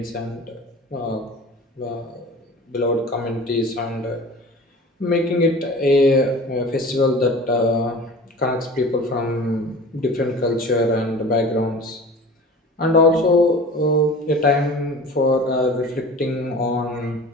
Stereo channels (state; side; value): normal; both; correlation 0.39